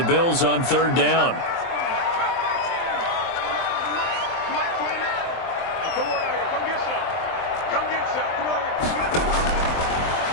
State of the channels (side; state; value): right; late; 23 ms